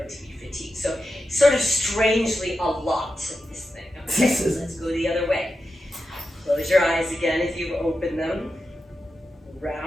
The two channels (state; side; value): normal; both; correlation 0.90